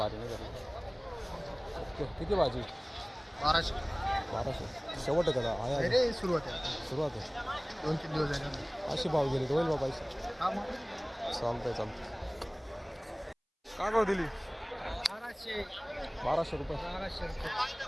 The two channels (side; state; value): both; identical; correlation 1.00